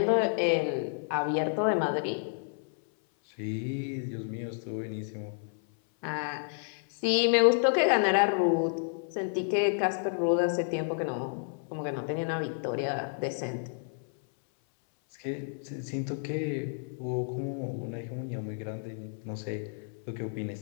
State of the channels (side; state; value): right; silent; 57 dB below the other